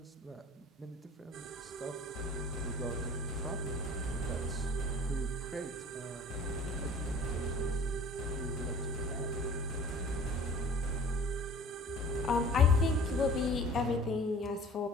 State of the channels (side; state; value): both; normal; correlation 0.46